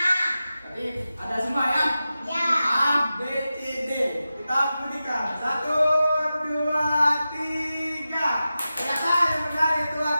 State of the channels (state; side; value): inverted; both; correlation -0.93